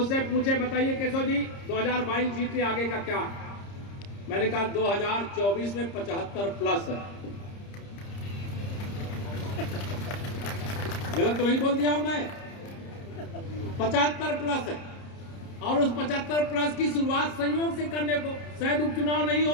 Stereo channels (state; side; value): late; right; 30 ms